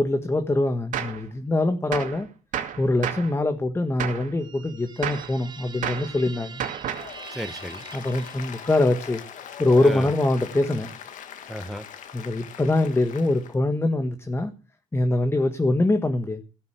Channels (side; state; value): both; normal; correlation 0.86